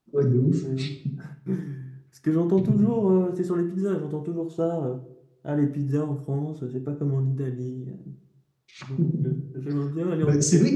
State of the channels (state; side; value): identical; both; correlation 1.00